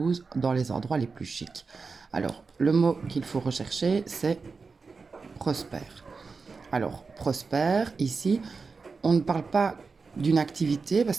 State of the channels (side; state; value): left; quieter; 4.6 dB